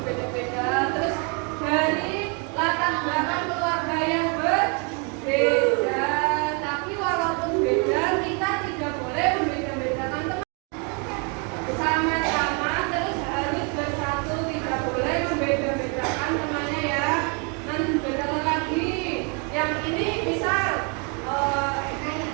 Terus dari latar belakang keluarga yang berbeda. Tapi walaupun beda, kita tidak boleh membeda-bedakan teman. Sama-sama terus harus bersatu, tidak boleh membeda-bedakan temannya ya. Nanti bedakan lagi. Yang ini misal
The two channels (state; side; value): quieter; left; 35.3 dB